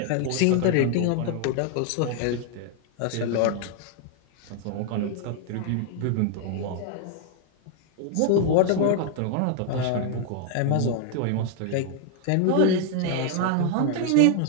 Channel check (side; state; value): both; different; correlation 0.00